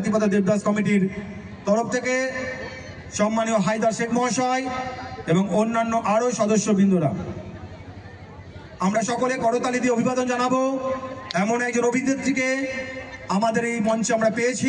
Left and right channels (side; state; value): both; identical; correlation 1.00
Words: দেবদাস কমিটির তরফ থেকে সম্মানীয় হায়দার শেখ মহাশয় এবং অন্যান্য আরও সদস্যবৃন্দরা। আমরা সকলে করতালি দিয়ে অভিবাদন জানাবো এমন একজন অভিনেত্রীকে আমাদের এই মঞ্চে আমরা